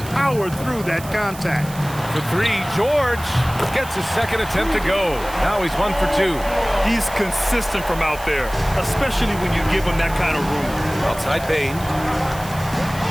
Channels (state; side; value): noise; right; hiss, 16 dB below the sound